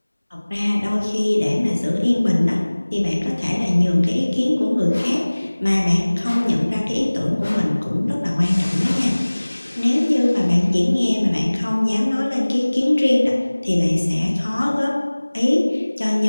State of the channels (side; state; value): both; inverted; correlation -1.00